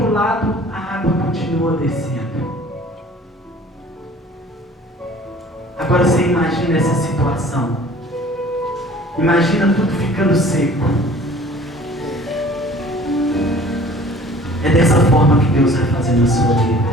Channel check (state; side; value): normal; both; correlation 0.49